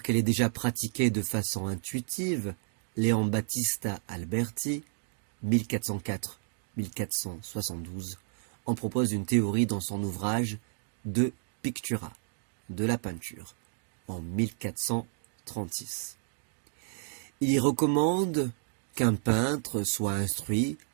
qu'elle est déjà pratiquée de façon intuitive, Leon Battista Alberti, 1404-1472, en propose une théorie dans son ouvrage De Pictura, de la peinture, en 1436. Il y recommande qu'un peintre soit instruit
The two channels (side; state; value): left; silent; digital silence